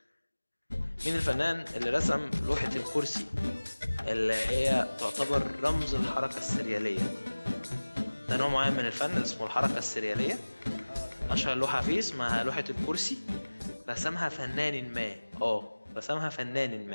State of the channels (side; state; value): both; inverted; correlation -1.00